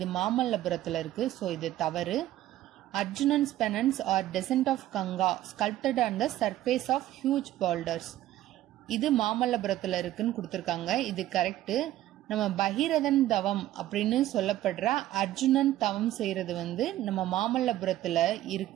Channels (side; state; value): left; quieter; 14.2 dB